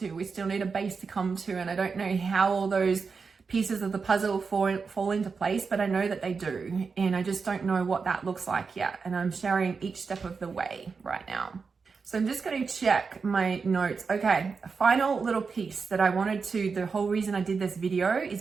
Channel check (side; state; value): left; quieter; 5.1 dB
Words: We still need a base to come to. And I don't know how all those pieces of the puzzle fall into place, but I know that they do. And I just don't know what that looks like yet. And I'm sharing each step of the way right now. So I'm just going to check my notes. Okay, a final little piece that I wanted to, the whole reason I did this video is